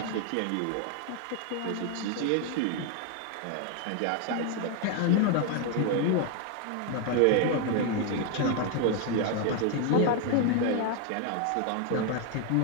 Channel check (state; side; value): different; both; correlation 0.01